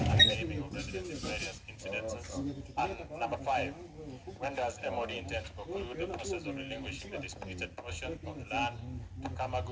naming of residents in various incidences? And number five, when does MOD intend to conclude the process of relinquishing the disputed portion of the land to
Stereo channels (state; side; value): identical; both; correlation 1.00